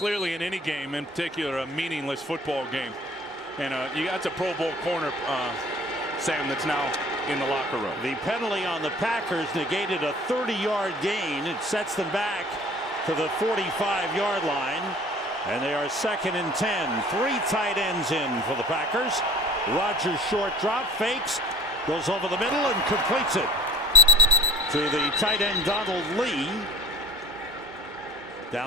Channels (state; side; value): normal; both; correlation 0.46